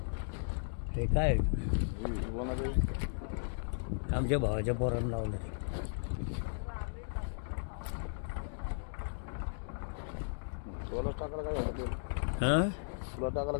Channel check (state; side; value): silent; right; digital silence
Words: ते काय आमच्या भावाच्या पोरांना लावलं ते. हां